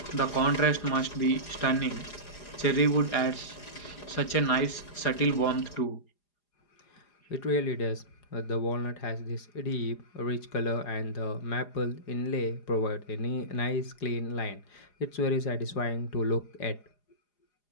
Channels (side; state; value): right; late; 4.9 ms